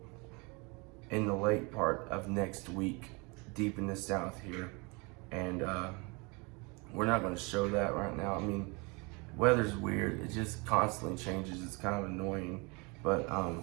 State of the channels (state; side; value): quieter; left; 29.1 dB